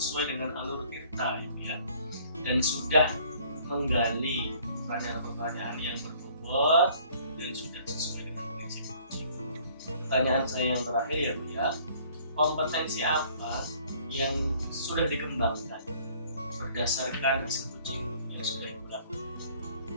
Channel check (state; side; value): inverted; both; correlation -0.57